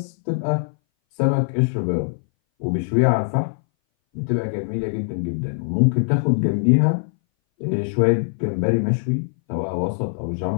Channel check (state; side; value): silent; right; 61 dB below the other